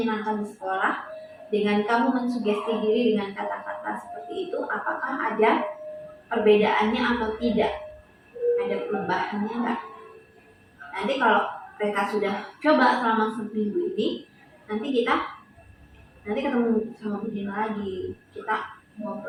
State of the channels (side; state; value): both; identical; correlation 1.00